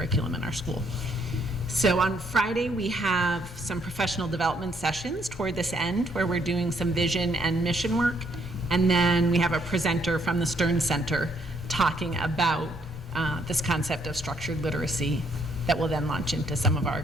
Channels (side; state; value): both; normal; correlation 0.70